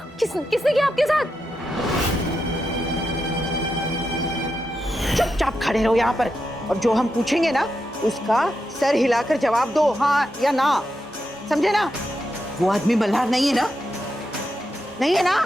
किसने किया आपके साथ? चुपचाप खड़े रहो यहाँ पर, और जो हम पूछेंगे ना उसका सर हिलाकर जवाब दो, हाँ या ना, समझे ना? वो आदमी मल्हार नहीं है ना? नहीं है ना?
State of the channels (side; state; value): both; normal; correlation 0.86